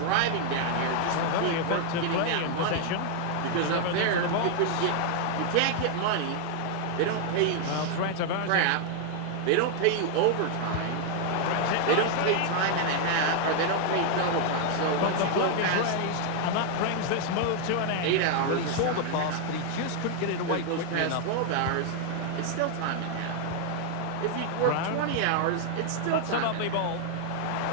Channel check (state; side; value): different; both; correlation 0.00